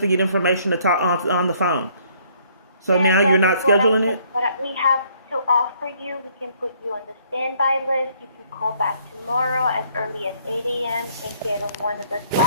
get information to talk on the phone. So now you're not scheduling it? What we have to offer you, we can put you on the standby list. You can call back tomorrow as early as 8 a.m. and get on one of the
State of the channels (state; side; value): inverted; both; correlation -0.64